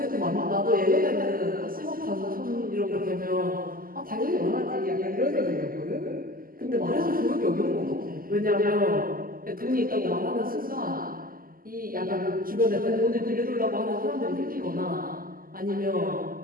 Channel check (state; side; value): late; left; 0.42 ms